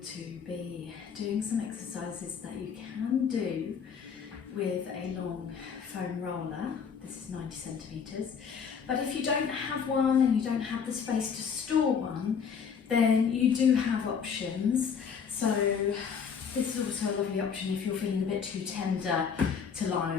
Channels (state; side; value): quieter; right; 6.6 dB